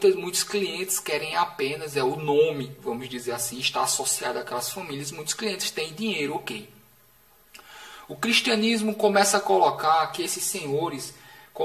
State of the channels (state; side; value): identical; both; correlation 1.00